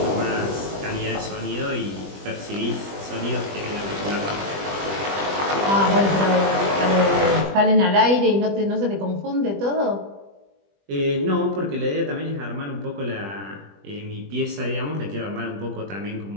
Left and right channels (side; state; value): left; late; 20 ms